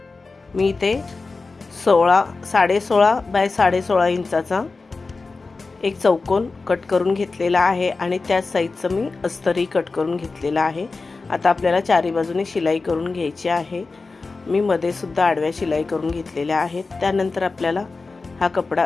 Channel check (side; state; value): right; quieter; 3.9 dB